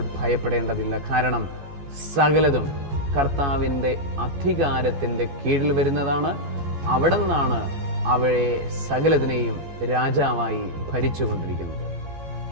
ഭയപ്പെടേണ്ടതില്ല. കാരണം സകലതും കർത്താവിൻ്റെ അധികാരത്തിൻ്റെ കീഴിൽ വരുന്നതാണ്. അവിടെ നിന്നാണ് അവയെ സകലതിനെയും രാജാവായി ഭരിച്ചുകൊണ്ടിരിക്കുന്നത്.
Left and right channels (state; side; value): late; left; 14 ms